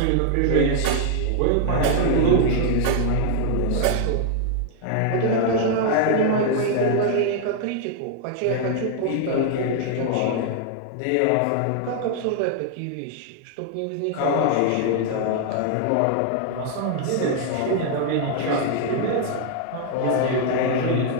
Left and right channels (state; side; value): different; both; correlation 0.00